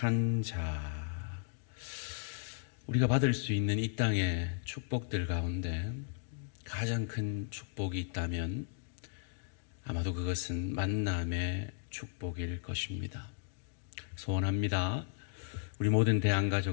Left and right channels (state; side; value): silent; right; digital silence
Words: 자. 우리가 받을 수 있는 이 땅의 축복들 가운데 가장 큰 축복이 있다면 아마도 그것은 만남의 축복일 것입니다. 소원합니다. 우리 모든